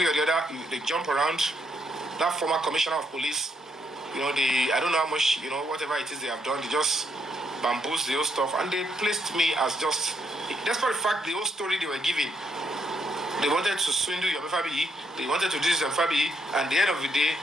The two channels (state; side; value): normal; both; correlation 0.75